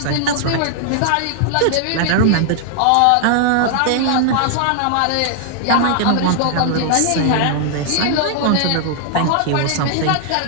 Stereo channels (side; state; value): both; different; correlation 0.00